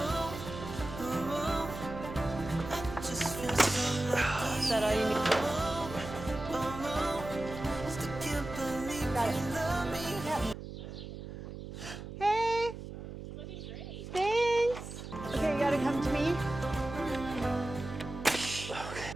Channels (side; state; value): right; noise; hum, 10 dB below the sound